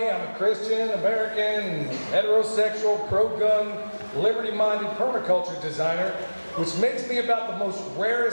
I'm a Christian, American, heterosexual, pro-gun, liberty-minded permaculture designer, which makes me about the most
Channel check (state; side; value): inverted; both; correlation -1.00